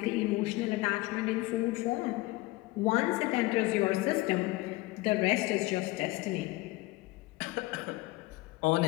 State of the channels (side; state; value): right; quieter; 20.5 dB